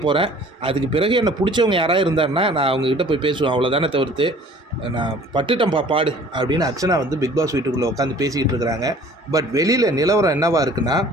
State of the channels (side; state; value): both; normal; correlation 0.50